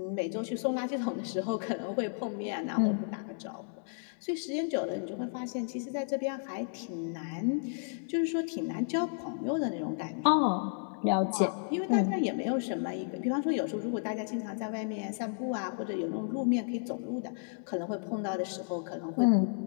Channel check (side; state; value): right; silent; digital silence